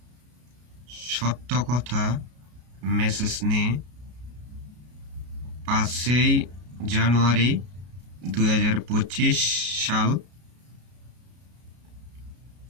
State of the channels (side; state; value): left; late; 33 ms